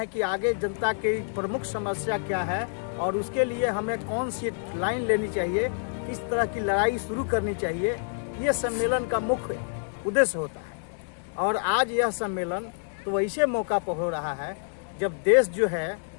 कि आगे जनता की प्रमुख समस्या क्या है और उसके लिए हमें कौन सी लाइन लेनी चाहिए, किस तरह की लड़ाई शुरू करनी चाहिए। ये सम्मेलन का मुख्य उद्देश्य होता है। और आज यह सम्मेलन तो ऐसे मौका पर हो रहा है जब देश जो है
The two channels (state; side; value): silent; right; 60 dB below the other